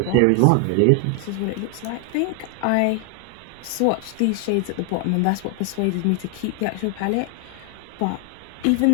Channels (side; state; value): both; different; correlation 0.00